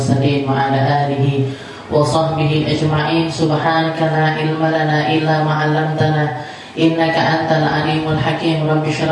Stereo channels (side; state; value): both; identical; correlation 1.00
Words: wa ala alihi wa sahbihi ajma'in. Subhanaka la ilma lana illa ma 'allamtana innaka antal alimul hakim. Rabbi